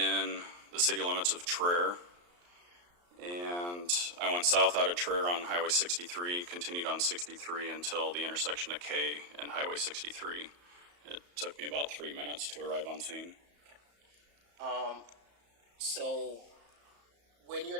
the city limits of Traer, and I went south out of Traer on Highway 63, continued on 63 until the intersection of K and Highway 63. It took me about 3 minutes to arrive on scene. So when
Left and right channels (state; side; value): late; left; 34 ms